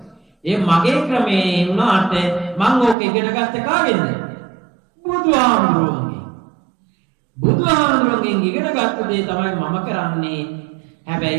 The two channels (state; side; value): drops out; left; at 3.0 s